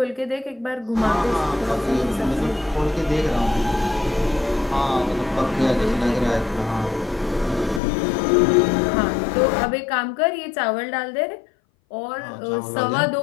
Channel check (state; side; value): drops out; right; at 7.8 s